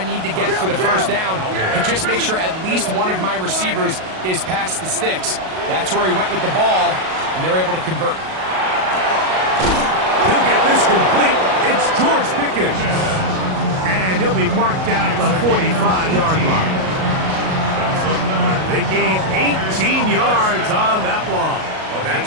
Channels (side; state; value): left; late; 38 ms